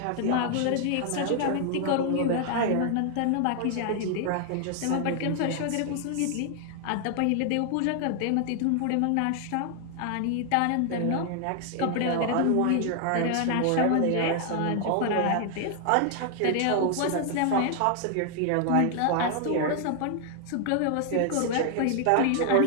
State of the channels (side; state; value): both; different; correlation 0.00